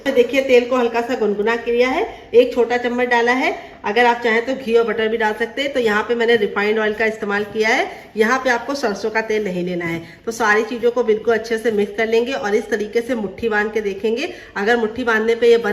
देखिए तेल को हल्का सा गुनगुना किया है, 1 छोटा चम्मच डाला है। अगर आप चाहें तो घी और बटर भी डाल सकते हैं। तो यहाँ पे मैंने रिफाइंड ऑयल का इस्तेमाल किया है। यहाँ पे आपको सरसों का तेल नहीं लेना है। तो सारी चीज़ों को बिल्कुल अच्छे से मिक्स कर लेंगे और इस तरीके से मुट्ठी बांध के देखेंगे। अगर मुट्ठी बांधने पे ये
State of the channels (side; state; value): both; identical; correlation 1.00